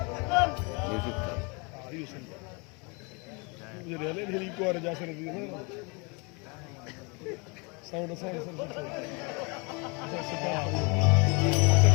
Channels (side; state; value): right; quieter; 30.7 dB